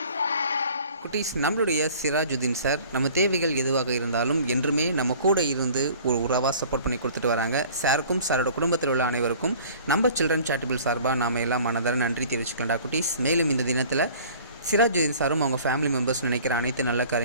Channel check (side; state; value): both; inverted; correlation -0.48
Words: குட்டீஸ், நம்மளுடைய சிராஜுதீன் சார் நம்ம தேவைகள் எதுவாக இருந்தாலும் என்றுமே நம்ம கூட இருந்து ஒரு உறவாக சப்போர்ட் பண்ணி கொடுத்துட்டு வராங்க. சாருக்கும் சாரோட குடும்பத்தில் உள்ள அனைவருக்கும் நம்ம சில்ட்ரன் சேரிட்டபிள் சார்பாக நாம் எல்லாம் மனதார நன்றி தெரிவிச்சுக்கலாம்டா குட்டீஸ். மேலும் இந்த தினத்தில் சிராஜுதீன் சாரும் அவங்க ஃபேமிலி மெம்பர்ஸ் நினைக்கிற அனைத்து நல்ல